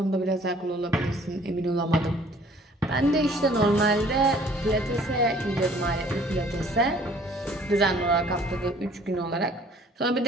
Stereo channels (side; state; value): both; normal; correlation 0.56